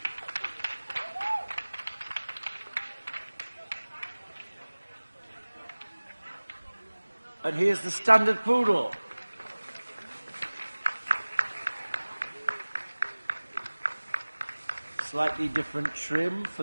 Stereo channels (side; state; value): both; inverted; correlation -1.00